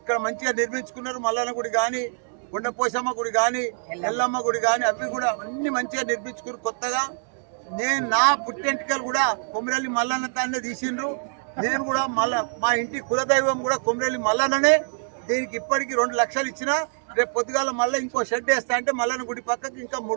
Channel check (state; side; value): silent; left; digital silence